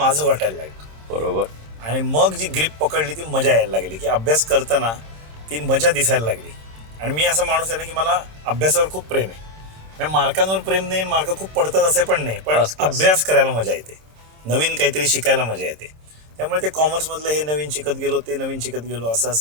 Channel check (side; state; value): left; late; 26 ms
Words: वाटायला लागलं. बरोबर. आणि मग जी ग्रीप पकडली ती मजा यायला लागली की अभ्यास करताना ती मजा दिसायला लागली. आणि मी असा माणूस आहे ना की मला अभ्यासावर खूप प्रेम आहे. म्हणजे मार्कांवर प्रेम नाही, मार्क खूप पडतात असे पण नाही, पण अभ्यास करायला मजा येते, नवीन काहीतरी शिकायला मजा येते. त्यामुळे ते कॉमर्समधलं हे नवीन शिकत गेलो, ते नवीन शिकत गेलो,